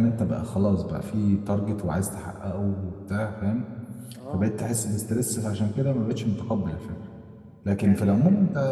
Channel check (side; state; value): both; identical; correlation 1.00